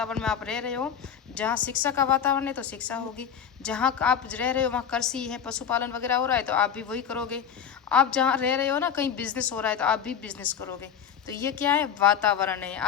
में आप रह रहे हो, जहाँ शिक्षा का वातावरण है तो शिक्षा होगी, जहाँ आप रह रहे हो वहाँ कृषि है, पशुपालन वगैरह हो रहा है तो आप भी वही करोगे, आप जहाँ रह रहे हो ना कहीं बिजनेस हो रहा है तो आप भी बिजनेस करोगे। तो ये क्या है? वातावरण है।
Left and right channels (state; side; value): quieter; right; 8.0 dB